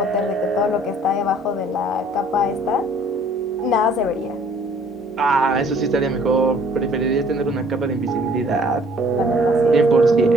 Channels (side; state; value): both; normal; correlation 0.57